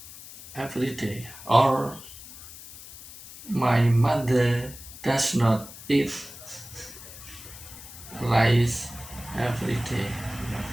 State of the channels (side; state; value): left; noise; hiss, 15 dB below the sound